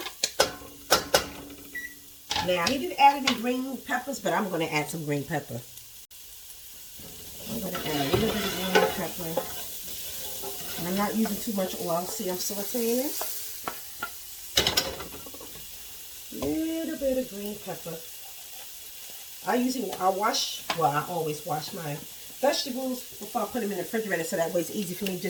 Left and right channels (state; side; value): identical; both; correlation 1.00